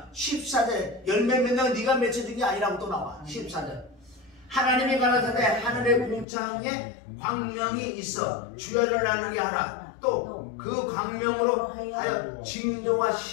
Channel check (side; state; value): right; drops out; at 6.2 s